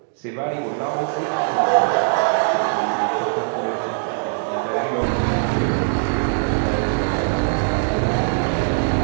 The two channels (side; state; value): left; silent; digital silence